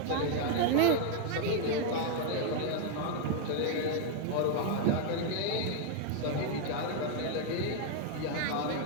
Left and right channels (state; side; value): different; both; correlation 0.00